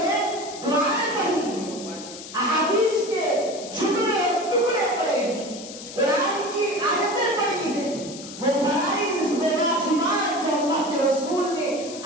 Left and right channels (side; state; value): left; noise; hiss, 13 dB below the sound